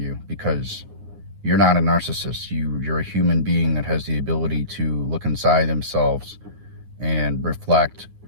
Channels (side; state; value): left; late; 9.6 ms